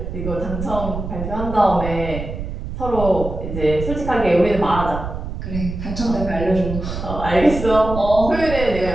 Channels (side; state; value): right; noise; rumble, 6 dB below the sound